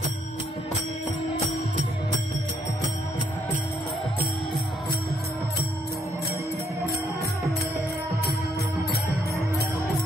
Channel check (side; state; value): both; normal; correlation 0.72